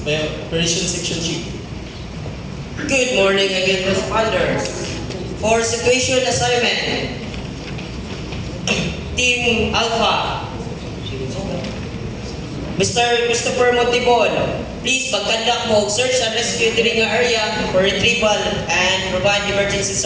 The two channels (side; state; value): both; identical; correlation 1.00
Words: by Operations Section Chief. Good morning again, responders. For situation assignment, Team Alpha, Mr. Christopher Montibon, please mag-conduct mo search and rescue diri nga area for retrieval and provide emergency